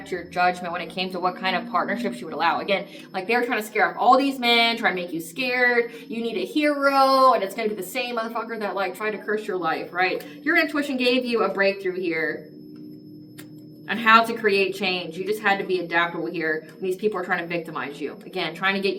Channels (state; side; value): identical; both; correlation 1.00